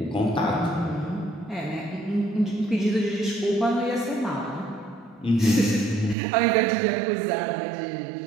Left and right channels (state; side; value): drops out; left; at 6.2 s